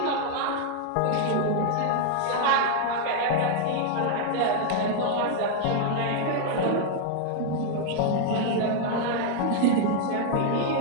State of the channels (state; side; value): different; both; correlation 0.00